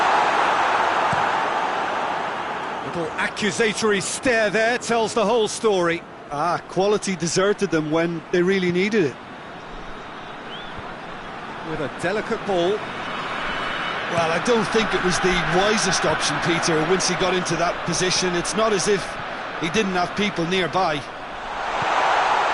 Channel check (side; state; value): both; identical; correlation 1.00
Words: Little accusatory stare there tells the whole story. Quality deserted them when they really needed it. With a delicate ball. Well, I don't think it was the wisest option, Peter, once he got into that position. It's not as if he didn't have people nearby.